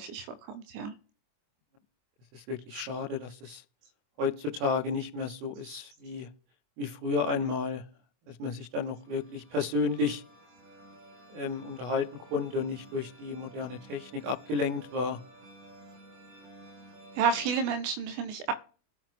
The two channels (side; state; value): left; late; 24 ms